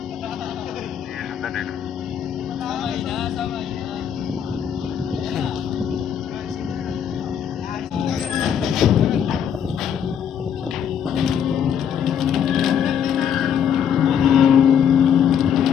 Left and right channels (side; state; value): right; quieter; 8.4 dB